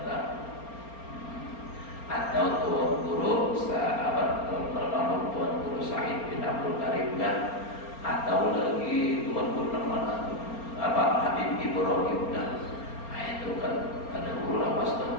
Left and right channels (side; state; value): right; late; 4.3 ms